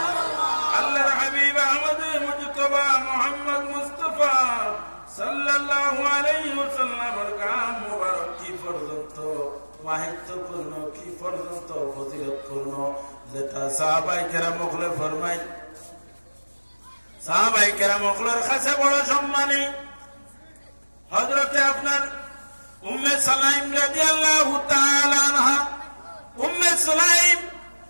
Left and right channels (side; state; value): both; inverted; correlation -1.00